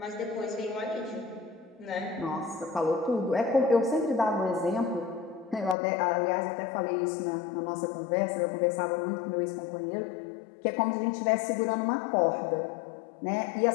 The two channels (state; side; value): drops out; right; at 5.8 s